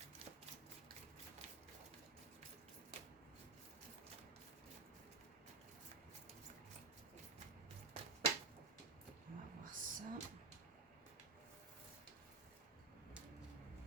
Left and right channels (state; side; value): quieter; left; 4.3 dB